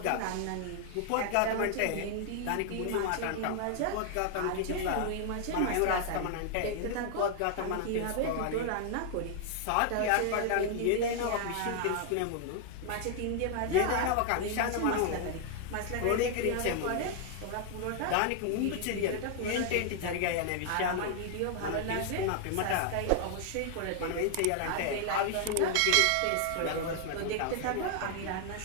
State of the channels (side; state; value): both; different; correlation 0.00